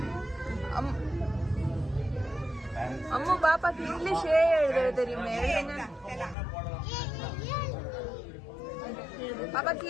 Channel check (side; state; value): right; drops out; at 6.4 s